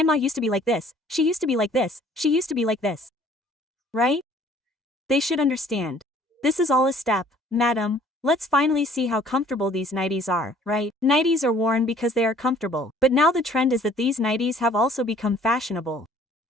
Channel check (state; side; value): normal; both; correlation 0.56